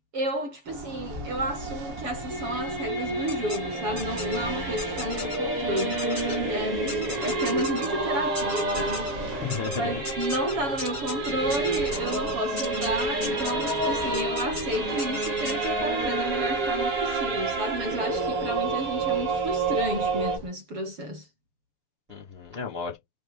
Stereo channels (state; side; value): late; left; 6.9 ms